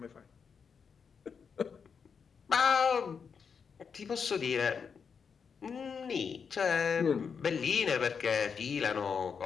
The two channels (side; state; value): right; quieter; 6.2 dB